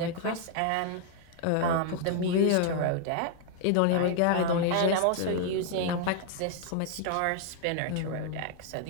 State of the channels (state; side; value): different; both; correlation 0.00